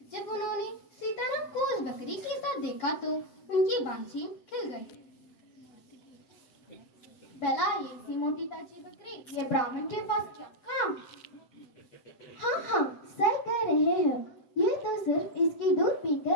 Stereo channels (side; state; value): right; late; 7.7 ms